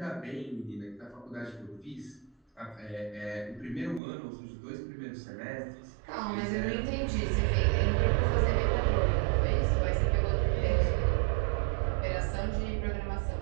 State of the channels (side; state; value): left; drops out; at 4.0 s